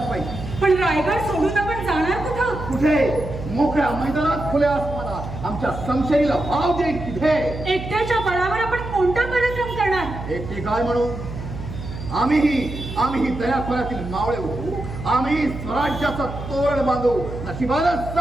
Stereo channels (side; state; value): right; noise; hum, 9 dB below the sound